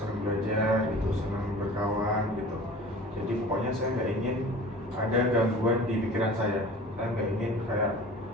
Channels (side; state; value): both; normal; correlation 0.41